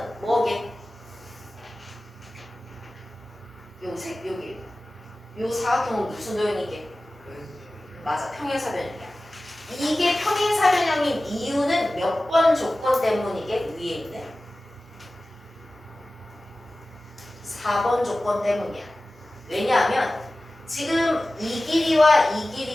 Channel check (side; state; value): both; normal; correlation 0.96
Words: 뭐게? 여기 요 사각형은 무슨 도형이게? 맞아, 평행사변형이야. 이게 평행사변형인 이유는 몇 번 조건 때문이게? 위에 있는 4번 조건 때문이야. 왜냐하면 지금 이 길이와 이